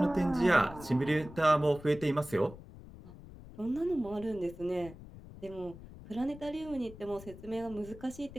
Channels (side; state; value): left; noise; rumble, 16 dB below the sound